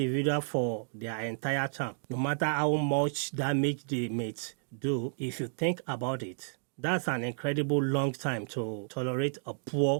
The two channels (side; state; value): left; silent; digital silence